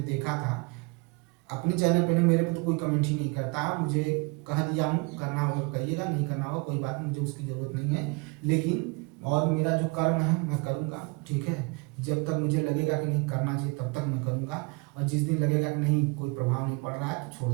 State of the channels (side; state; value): left; quieter; 28.8 dB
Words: देखा था अपने चैनल पे नहीं, मेरे पे तो कोई कमेंट ही नहीं करता। मुझे कह दिया हूँ, करना होगा करिएगा, नहीं करना होगा कोई बात नहीं, मुझे उसकी ज़रूरत नहीं है। लेकिन और मेरा जो कर्म है मैं करूँगा, ठीक है। जब तक मुझे लगेगा कि नहीं करना चाहिए तब तक मैं करूँगा, और जिस दिन लगेगा कि नहीं कोई प्रभाव नहीं पड़ रहा है तो छोड़